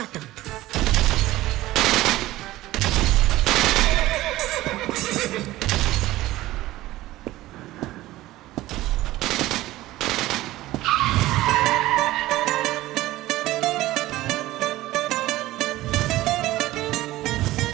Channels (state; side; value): quieter; left; 16.7 dB